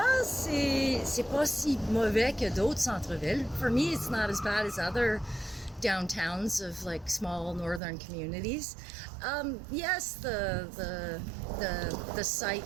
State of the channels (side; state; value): left; drops out; at 7.8 s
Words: c'est pas si mauvais que d'autres centres-villes. For me, it's not as bad as other downtowns of like small northern communities. Yes, the